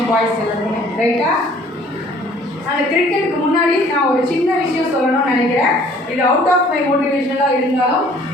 பாய்ஸ் எல்லாருமே, ரைட்டா? அந்த கிரிக்கெட்டுக்கு முன்னாடி நான் ஒரு சின்ன விஷயம் சொல்லணும்னு நினைக்கிறேன். இது அவுட் ஆஃப் மை மோட்டிவேஷனலாக இருந்தாலும்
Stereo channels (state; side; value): normal; both; correlation 0.55